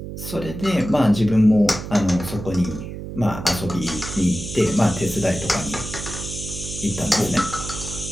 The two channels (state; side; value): noise; right; hum, 9 dB below the sound